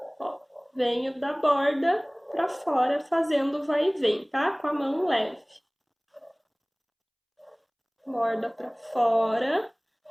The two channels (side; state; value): both; identical; correlation 1.00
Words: Ó, venho da borda pra fora fazendo vai e vem, tá? Com a mão leve. Borda pra fora.